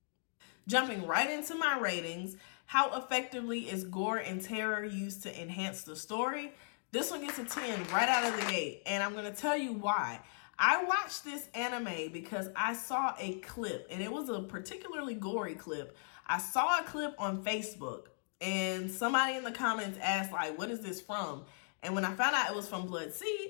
Jumping right into my ratings, how effectively is gore and terror used to enhance the story? This one gets a 10 right out of the gate, and I'm going to tell you why. I watched this anime because I saw a clip, and it was a particularly gory clip. I saw a clip on Facebook, and somebody in the comments asked, like, what is this from? And when I found out it was from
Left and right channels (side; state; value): right; silent; digital silence